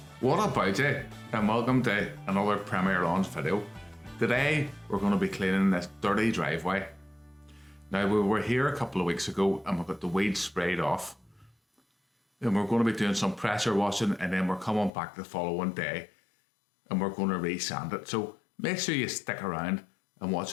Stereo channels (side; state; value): right; drops out; at 14.9 s